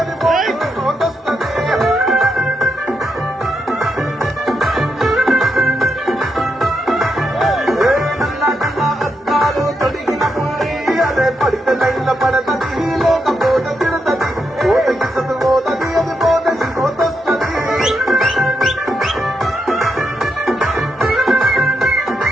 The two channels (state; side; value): normal; both; correlation 0.82